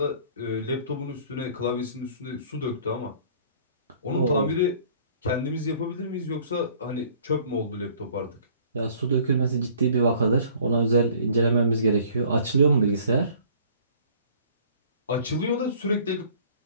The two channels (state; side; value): inverted; both; correlation -0.54